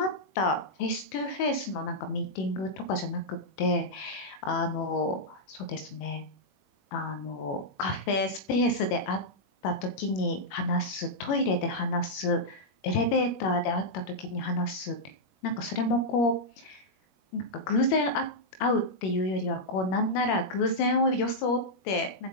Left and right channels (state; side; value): late; right; 21 ms